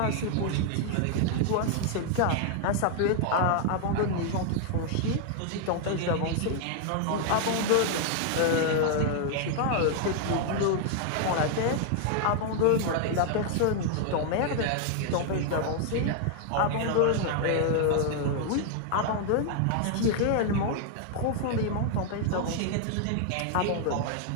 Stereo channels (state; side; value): different; both; correlation 0.00